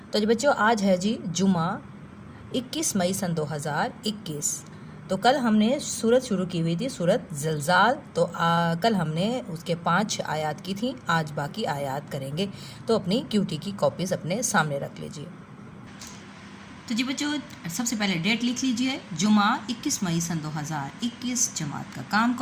تو جی بچوں، آج ہے جی جمعہ 21 مئی سن 2021۔ تو کل ہم نے سورت شروع کی ہوئی تھی، سورت زلزال۔ تو کل ہم نے اس کے 5 آیات کی تھیں، آج باقی آیات کریں گے۔ تو اپنی کیوٹی کی کاپیز اپنے سامنے رکھ لیجیے۔ تو جی بچوں، سب سے پہلے ڈیٹ لکھ لیجئے، جمعہ 21 مئی سن 2021، جماعت کا کام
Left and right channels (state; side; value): identical; both; correlation 1.00